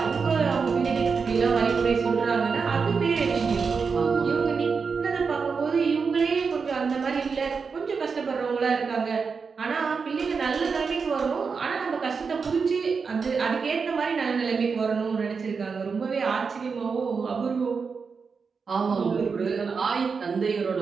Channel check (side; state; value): left; quieter; 5.3 dB